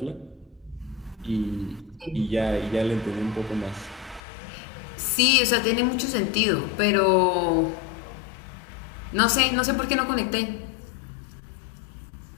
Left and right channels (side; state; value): right; drops out; at 4.2 s